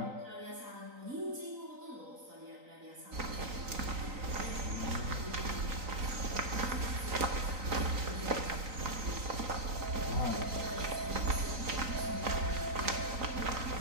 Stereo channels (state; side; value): late; left; 3.9 ms